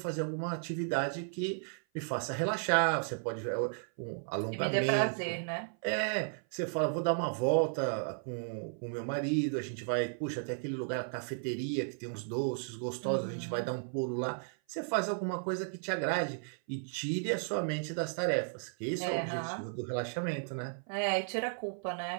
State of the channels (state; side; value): silent; left; 55 dB below the other